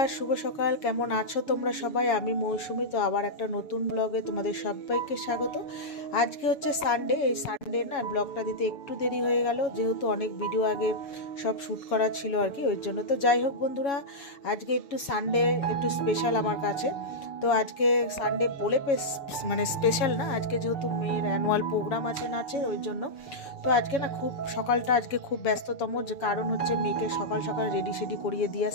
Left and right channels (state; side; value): late; right; 7.2 ms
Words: শুভ সকাল। কেমন আছো তোমরা সবাই? আমি মৌসুমি। তো আবার একটা নতুন ব্লগে তোমাদের সবাইকে স্বাগত। আজকে হচ্ছে সানডে। এই সানডে না ব্লগটা দিতে একটু দেরি হয়ে গেল, যেহেতু অনেক ভিডিও আগে সব শ্যুট করা ছিল আর কি, ওই জন্য। তো যাই হোক বন্ধুরা, আজকে একটু সানডে একটু স্পেশাল আমার কাছে। তো আজকে সানডে বলে মানে স্পেশাল না, আজকে যেহেতু মেয়ের অ্যানুয়াল প্রোগ্রাম আছে নাচের, ওই জন্য। তো আজকে না খুব সকালটা আজকে খুব ব্যস্ততম, যে কারণ হচ্ছে মেয়েকে সকাল সকাল রেডি সেডি করিয়ে দিয়ে